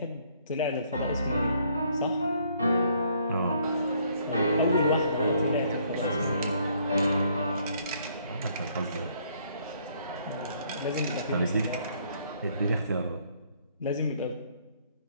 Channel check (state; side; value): inverted; both; correlation -0.66